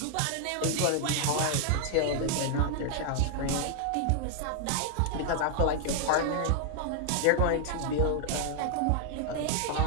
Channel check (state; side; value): different; both; correlation 0.00